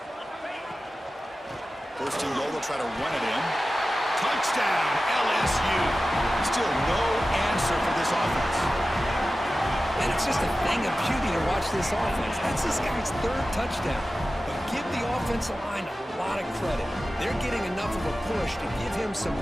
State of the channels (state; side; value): normal; both; correlation 0.95